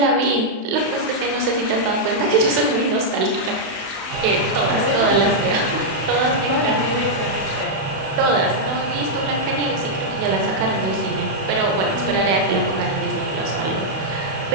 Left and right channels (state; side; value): late; left; 31 ms